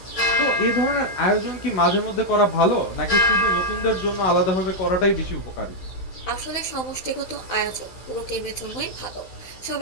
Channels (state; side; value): late; right; 16 ms